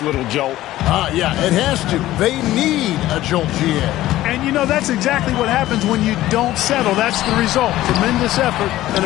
little jolt. Yeah, it has to. They need a jolt, GA. And, you know, that's exactly what happens when you don't settle. That's the result. Tremendous effort and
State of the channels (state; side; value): quieter; right; 15.1 dB